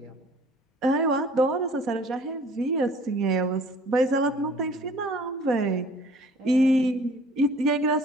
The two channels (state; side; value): normal; both; correlation 0.51